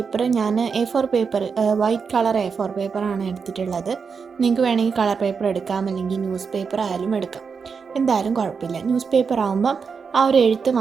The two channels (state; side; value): quieter; left; 5.7 dB